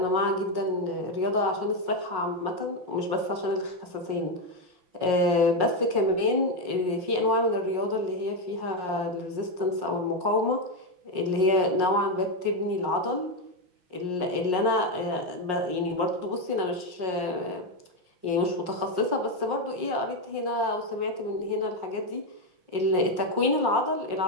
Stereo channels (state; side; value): late; left; 5.5 ms